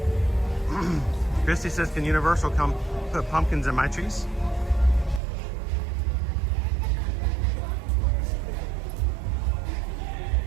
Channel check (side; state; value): left; drops out; at 5.2 s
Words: Christy says, can Universal come put pumpkins in my trees?